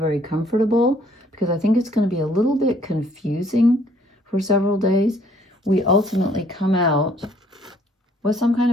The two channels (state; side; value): normal; both; correlation 0.62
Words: comfortable, because I think it's going to be a little bit confusing for several days, we ultimately come out with some kind